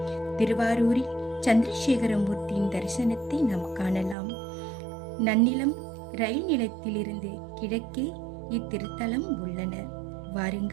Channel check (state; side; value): drops out; left; at 4.2 s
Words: திருவாரூரில் சந்திரசேகர மூர்த்தியின் தரிசனத்தை நாம் காணலாம். நன்னிலம் ரயில் நிலையத்திலிருந்து கிழக்கே இத்திருத்தலம் உள்ளன.